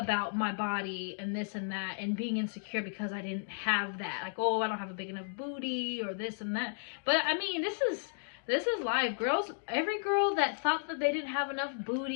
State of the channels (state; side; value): silent; right; digital silence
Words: my body and this and that, and being insecure because I didn't have that, like, oh, I don't have a big enough booty or this and that. But I mean, this is life. Girls, every girl that thought that they didn't have enough